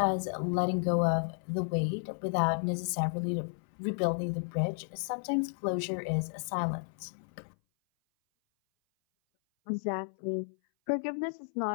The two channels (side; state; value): right; silent; 56 dB below the other